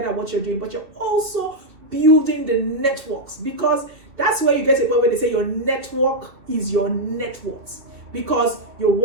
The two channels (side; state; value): left; late; 2.5 ms